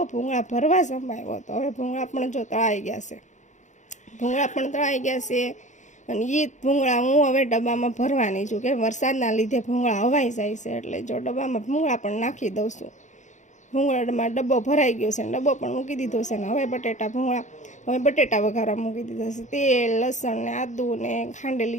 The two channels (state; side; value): late; right; 0.35 ms